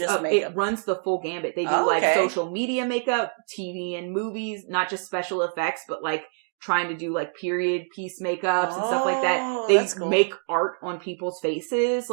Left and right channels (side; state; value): left; silent; 61 dB below the other